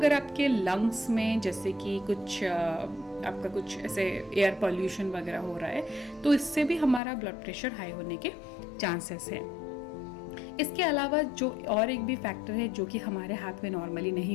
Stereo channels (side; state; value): right; drops out; at 7.0 s